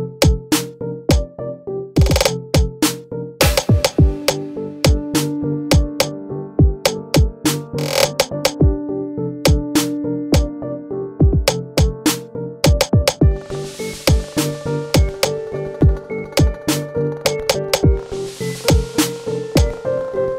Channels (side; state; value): both; identical; correlation 1.00